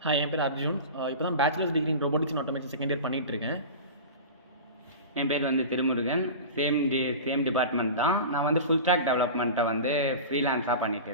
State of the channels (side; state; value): both; inverted; correlation -0.31